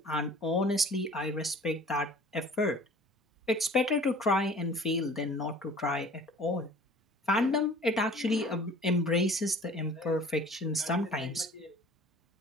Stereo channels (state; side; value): normal; both; correlation 0.48